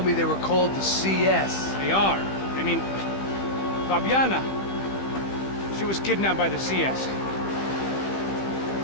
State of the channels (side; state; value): right; late; 15 ms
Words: me they were called the CS? They are. I mean, Fabiana. She was kidnapped by the CS.